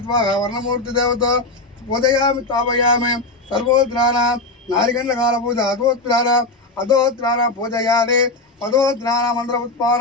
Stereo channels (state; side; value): quieter; right; 3.2 dB